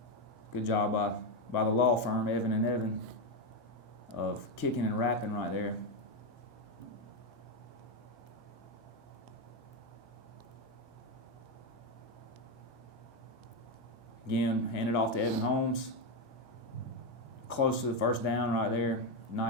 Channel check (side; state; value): both; normal; correlation 0.08